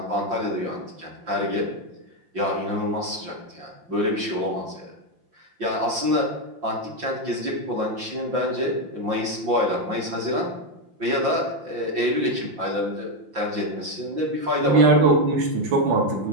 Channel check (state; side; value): late; left; 5.8 ms